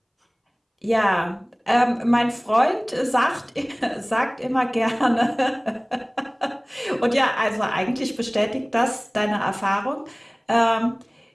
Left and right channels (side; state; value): both; identical; correlation 1.00